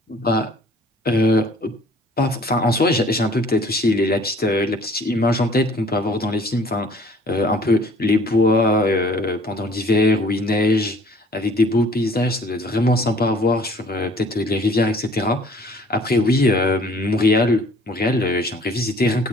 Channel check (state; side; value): normal; both; correlation 0.54